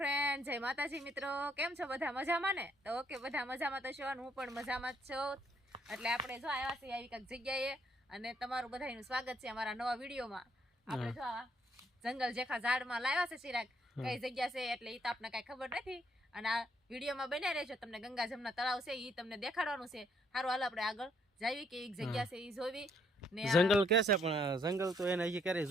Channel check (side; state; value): both; normal; correlation 0.69